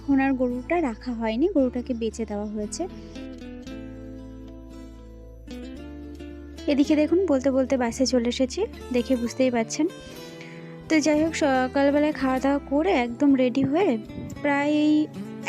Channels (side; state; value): both; identical; correlation 1.00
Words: আর গরুটা রাখা হয়নি, গরুটাকে বেচে দেওয়া হয়েছে। এদিকে দেখুন বলতে বলতে বাসে চলে এসেছি, দেখে বুঝতেই পারছেন। তো যাই হোক, সকালবেলায় খাওয়া দাওয়া করে একদম রেডি হয়ে প্রায় এই